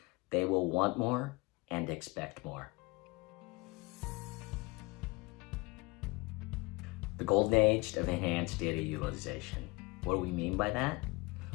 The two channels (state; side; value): quieter; right; 25.3 dB